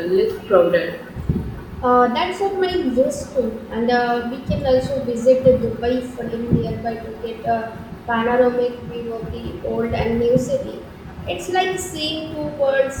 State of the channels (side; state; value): both; identical; correlation 1.00